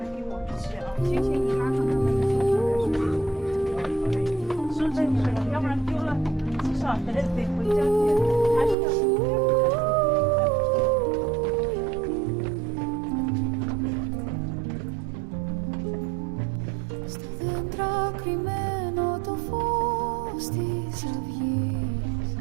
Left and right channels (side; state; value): left; drops out; at 8.8 s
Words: Στο δέντρα κρυμμένο το φως της αυγής,